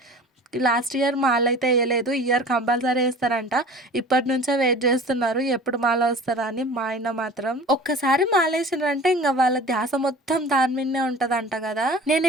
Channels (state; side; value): normal; both; correlation 0.42